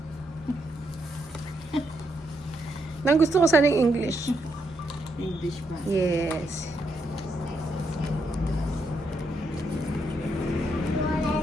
Nang gusto ko sana yung English. English ba? Yes.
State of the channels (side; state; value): both; normal; correlation 0.79